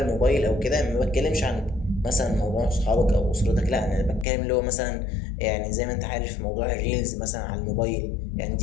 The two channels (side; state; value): right; drops out; at 4.2 s